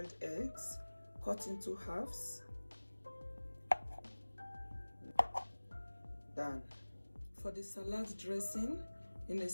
eggs, cut into halves, done. For the salad dressing, in a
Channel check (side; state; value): both; inverted; correlation -1.00